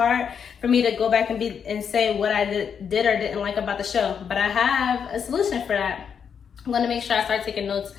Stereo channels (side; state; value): right; quieter; 7.2 dB